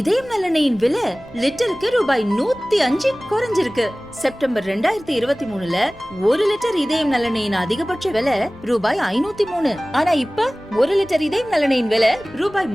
நல்லெண்ணெயின் விலை லிட்டருக்கு ரூபாய் 105 குறைஞ்சிருக்கு. செப்டம்பர் 2023ல 1 லிட்டர் இதயம் நல்லெண்ணெயின் அதிகபட்ச விலை ரூபாய் 503. ஆனா இப்ப 1 லிட்டர் இதயம் நல்லெண்ணெயின் விலை ரூபாய்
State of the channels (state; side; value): noise; left; rumble, 24 dB below the sound